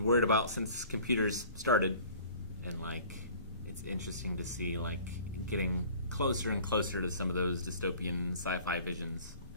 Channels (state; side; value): inverted; both; correlation -0.47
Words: worried about since computers started, and like it's interesting to see like getting closer and closer to some of those dystopian sci-fi visions,